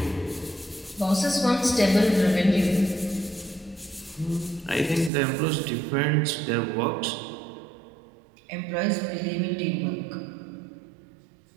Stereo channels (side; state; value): left; drops out; at 5.1 s